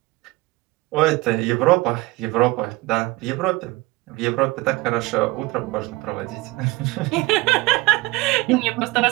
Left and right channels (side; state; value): left; quieter; 21.7 dB